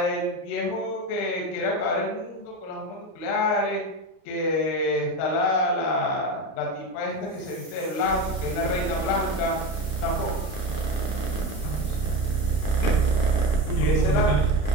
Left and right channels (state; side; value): late; right; 31 ms